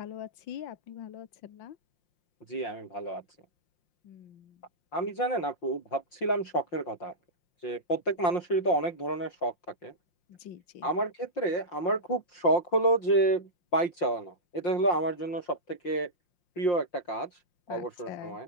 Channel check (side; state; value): right; late; 5.7 ms